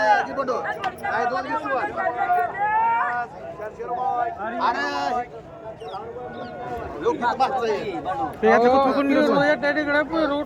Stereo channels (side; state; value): both; identical; correlation 1.00